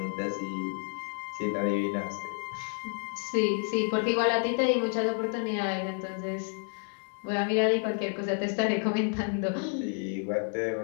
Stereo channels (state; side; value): silent; right; 56 dB below the other